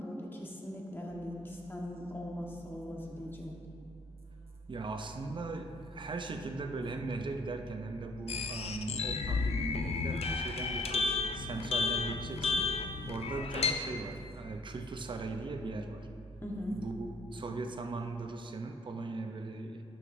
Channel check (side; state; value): both; normal; correlation 0.59